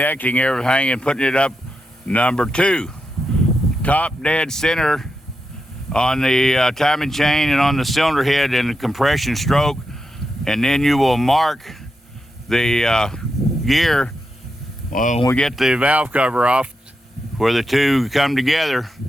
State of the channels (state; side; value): normal; both; correlation 0.87